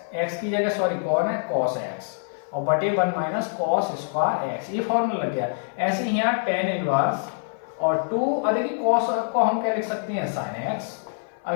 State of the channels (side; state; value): right; silent; 56 dB below the other